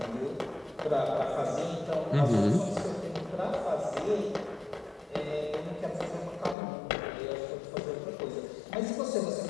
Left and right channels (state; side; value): drops out; right; at 6.6 s